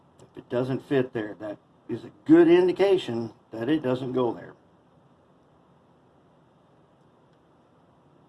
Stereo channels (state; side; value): identical; both; correlation 1.00